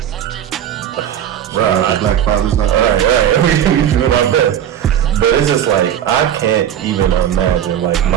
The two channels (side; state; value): left; quieter; 10.1 dB